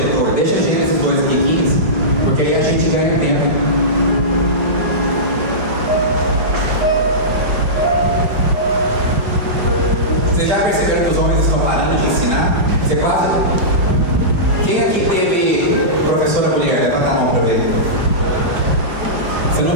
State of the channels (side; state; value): left; late; 5.0 ms